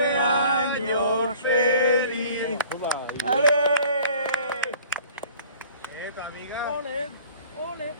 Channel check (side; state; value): both; inverted; correlation -0.49